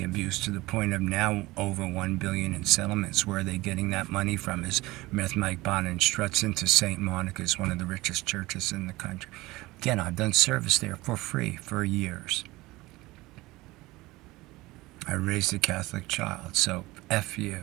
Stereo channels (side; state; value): left; quieter; 20.1 dB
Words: abuse, to the point of now over $1 billion in settlements. Where are they getting that money from? Is Meth Mike Bond and Struts into St. Monica's, one of the richest churches in the country. Again, I've done service there for free for years. I raised a Catholic child, so F you,